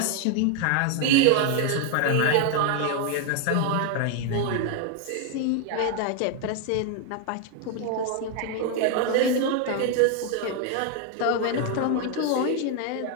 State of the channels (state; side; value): different; both; correlation 0.00